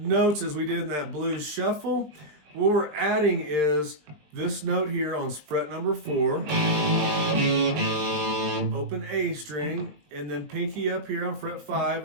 as we did in that blues shuffle. What we're adding is this note here on fret number 4, open A string, and then pinky up here on fret 5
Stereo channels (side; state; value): left; late; 20 ms